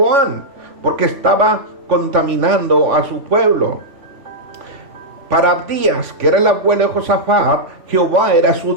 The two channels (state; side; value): late; left; 3.5 ms